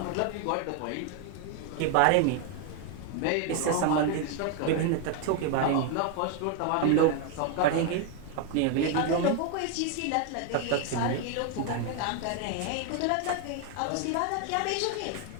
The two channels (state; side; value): different; both; correlation 0.00